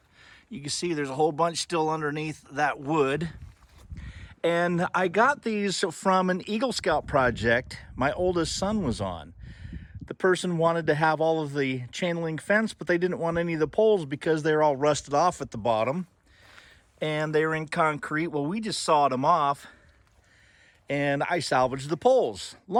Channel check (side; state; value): both; identical; correlation 1.00